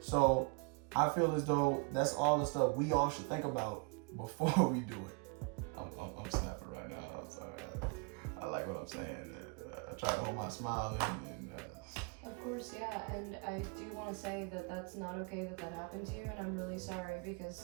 I feel as though that's all the stuff we all should think about before we do it. I'm snapping right now. I'm sorry. I like what I'm saying. I try to hold my smile in. Of course, yeah. And I do want to say that that's not okay that happened to you, and I'm really sorry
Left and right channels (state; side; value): quieter; left; 34.0 dB